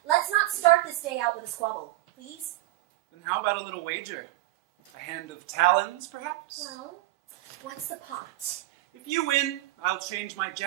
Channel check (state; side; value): quieter; left; 17.8 dB